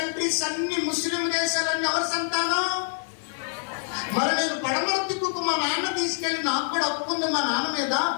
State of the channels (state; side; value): silent; right; 61 dB below the other